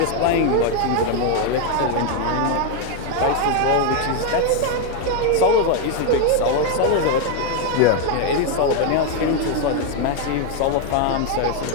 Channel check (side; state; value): both; different; correlation 0.01